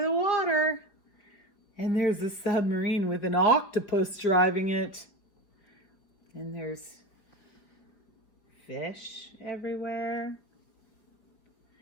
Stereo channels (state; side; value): late; right; 4.7 ms